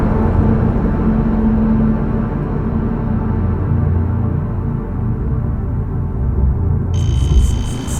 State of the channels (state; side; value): identical; both; correlation 1.00